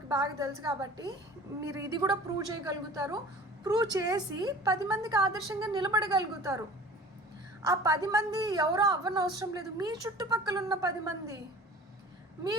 బాగా తెలుసు. కాబట్టి మీరు ఇది కూడా ప్రూవ్ చేయగలుగుతారు. ప్రూవ్ చేసి 10 మందికి ఆదర్శంగా నిలబడగలుగుతారు. ఆ 10 మంది ఎవరో అవ్వనవసరం లేదు. మీ చుట్టుపక్కల ఉన్న 10 మంది, మీ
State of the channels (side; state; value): both; normal; correlation 0.43